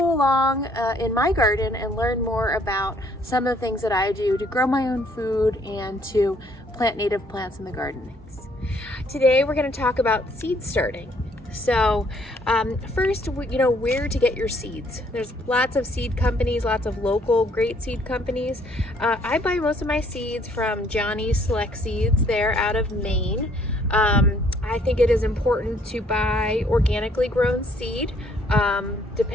along in my garden and learn more about some of the things that I do to grow my own food and to plant native plants in the garden. Today we're going to talk about seed starting. So first, where to get your seeds. There's lots of seed companies, lots of local great seed companies. I buy most of my seeds from Johnny's Select Seeds. They're out of Maine. I think it is important to buy organically grown seed,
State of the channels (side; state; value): both; normal; correlation 0.64